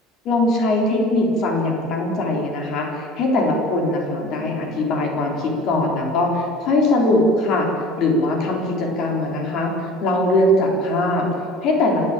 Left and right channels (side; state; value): both; normal; correlation 0.43